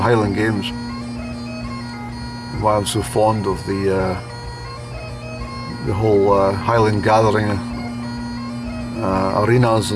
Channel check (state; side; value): identical; both; correlation 1.00